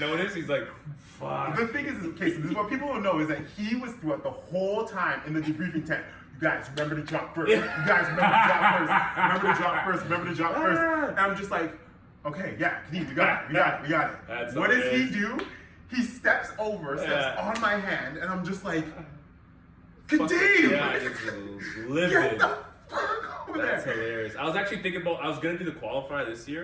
he's like, fuck. The thing is, okay, so this is what people don't know, is that he was throughout the whole time in the debriefing tent. You guys, remember to drop first. You guys, remember to drop first. Remember to drop first. Remember to drop first. And I'm just like, okay, yeah, Kadeem, we got it. What does he do? He steps on my hand, and I'm just like, Kadeem! Get the fuck over there! That's hilarious. I was actually thinking about, I was gonna do the qualifier this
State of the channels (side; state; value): both; identical; correlation 1.00